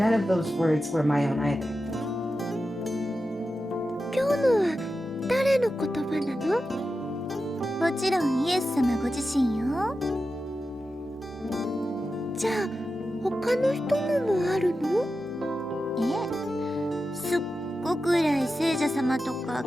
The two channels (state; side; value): normal; both; correlation 0.91